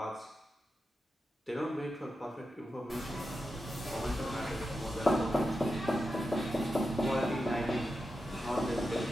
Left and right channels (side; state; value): both; normal; correlation 0.90